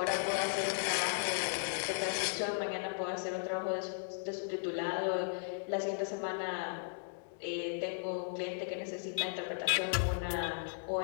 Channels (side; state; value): right; silent; digital silence